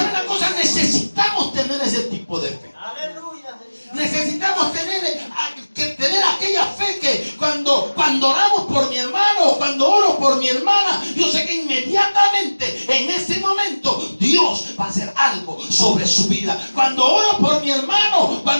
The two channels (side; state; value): both; inverted; correlation -1.00